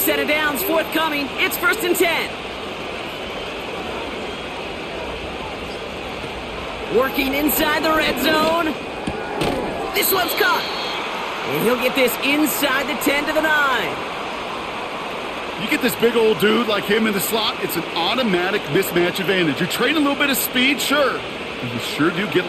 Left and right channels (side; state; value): both; identical; correlation 1.00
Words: of downs forthcoming. It's 1st and 10. Working inside the red zone. This one's caught. And he'll get this inside the 10 to the 9. You get this big old dude like him in the slot, it's an automatic mismatch advantage. You trade a little bit of speed, sure. But you sure do get